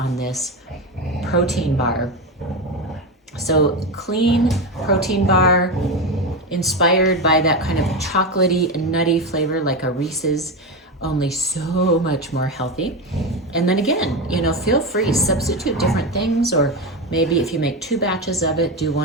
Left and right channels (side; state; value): both; normal; correlation 0.16